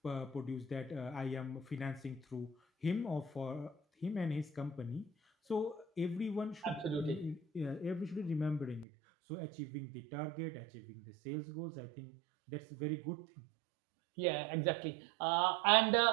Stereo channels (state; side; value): drops out; left; at 8.8 s